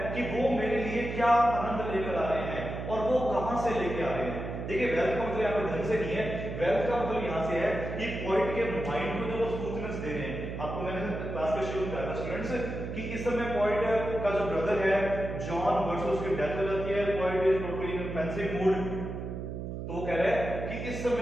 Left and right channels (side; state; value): right; noise; hum, 6 dB below the sound